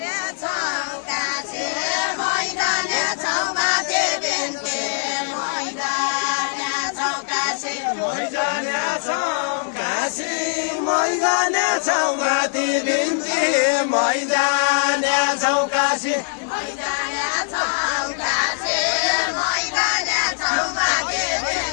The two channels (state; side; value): silent; right; digital silence